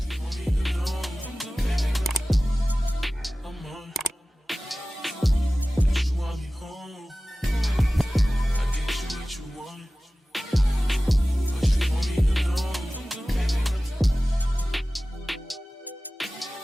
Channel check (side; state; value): both; normal; correlation 0.97